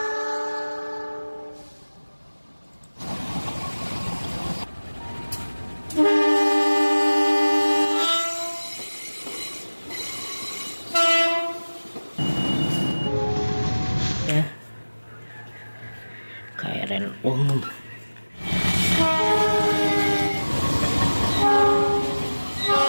Ya, KRL umum.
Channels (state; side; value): inverted; both; correlation -1.00